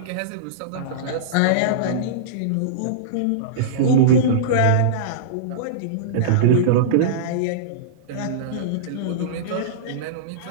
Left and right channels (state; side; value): different; both; correlation -0.04